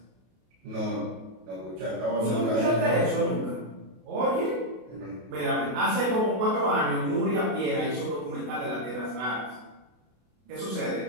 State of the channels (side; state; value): left; late; 32 ms